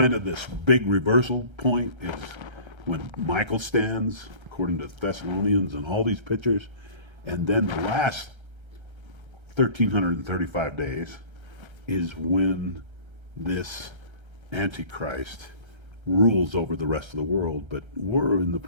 of this big reversal point, is when Michael stands, according to Thessalonians and all these pictures. And then the last 1,335 days is when this Antichrist rules over the rest of the world. But we're in the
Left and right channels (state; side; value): late; left; 1.3 ms